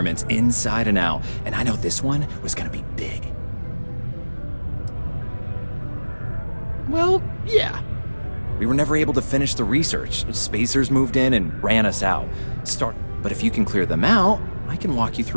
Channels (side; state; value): both; inverted; correlation -1.00